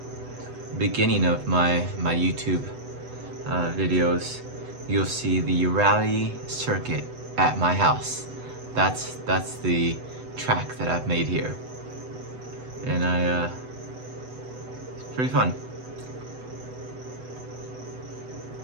beginning of my YouTube videos, you'll see the rally circuit at my house. That's the track that I've made here, and it's pretty fun.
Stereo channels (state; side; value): late; left; 8.0 ms